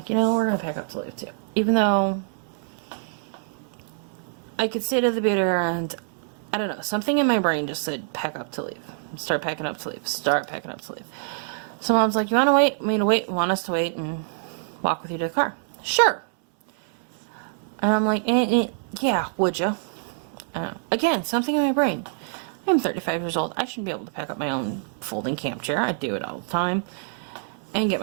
you know, we're going to pack up to leave too. Even though I could stay to the bitter end, I don't know, something in my brain just said, pack up to leave. Start packing up to leave. Start packing up to leave. So Mom's like, you want to wait? Want us to wait and walk with you to the car? Sure. And I'm like, yeah, would you? Again, something in my brain. I'm 35 years old. I should be able to pack up my own folding camp chair. I do it all the time. And get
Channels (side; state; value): left; silent; 62 dB below the other